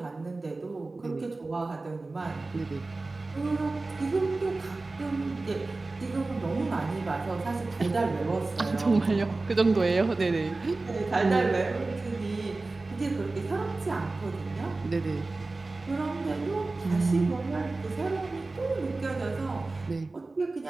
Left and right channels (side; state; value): left; quieter; 3.4 dB